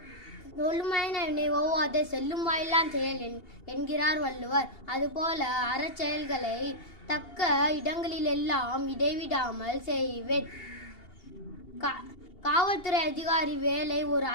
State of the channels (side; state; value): right; late; 2.8 ms